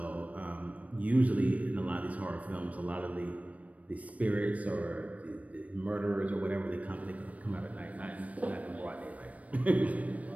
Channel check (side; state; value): left; late; 0.068 ms